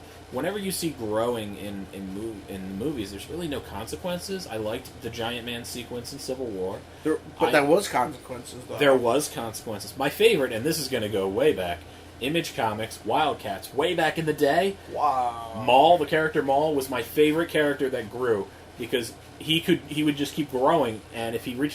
Whenever you see growing in movies, there's really no consequences. I liked the Giant Man sequence in Civil War. There was consequences, though. There was consequences. My favorite, and this is going to go way back, Image Comics, Wildcats, way back in the day. Wow. Maul, the character Maul, was my favorite character that grew because he would just keep growing, and if he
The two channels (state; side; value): identical; both; correlation 1.00